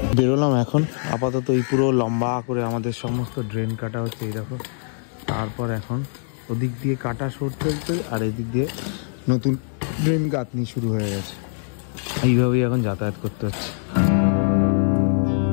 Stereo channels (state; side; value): silent; right; digital silence